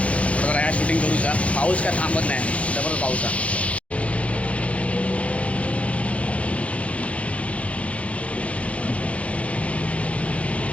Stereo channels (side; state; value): right; late; 0.064 ms